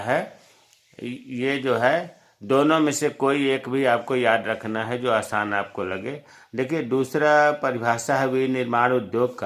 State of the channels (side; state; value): both; identical; correlation 1.00